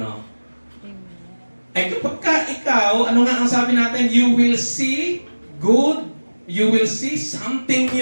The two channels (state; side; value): inverted; both; correlation -1.00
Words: Eh kapag ikaw, ano nga ang sabi natin? You will see good, you will see something